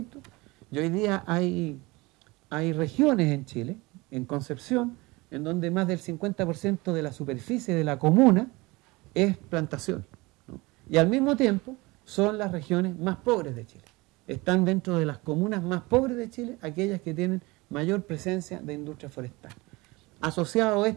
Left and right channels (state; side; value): quieter; left; 23.3 dB